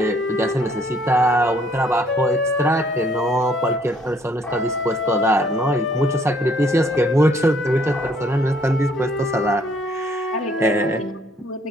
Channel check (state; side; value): normal; both; correlation 0.64